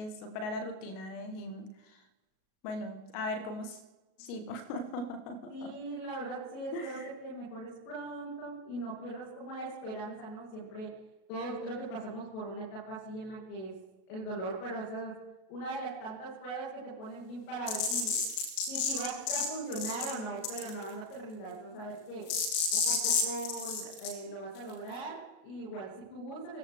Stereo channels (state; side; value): late; right; 37 ms